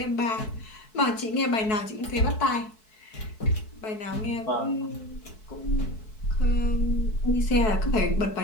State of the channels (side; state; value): right; late; 4.6 ms